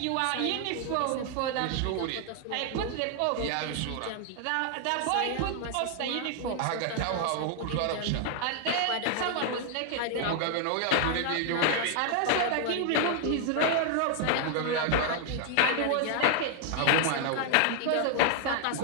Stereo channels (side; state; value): both; different; correlation 0.00